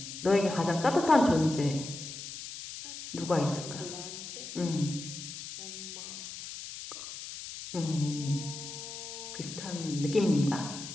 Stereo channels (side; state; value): left; noise; hiss, 10 dB below the sound